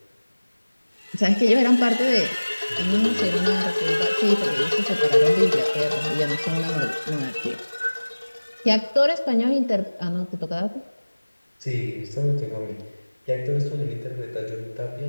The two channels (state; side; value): inverted; both; correlation -1.00